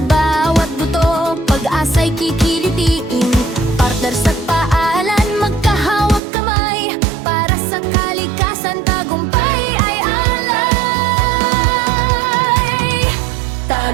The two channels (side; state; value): left; drops out; at 6.2 s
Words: buto, pag-asa'y kikilitiin. Partners at paalan, magkahawag kamay. Para sa kalikasan, tagumpay ay alay.